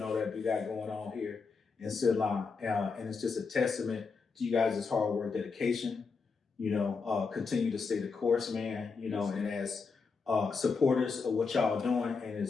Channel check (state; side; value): quieter; right; 4.9 dB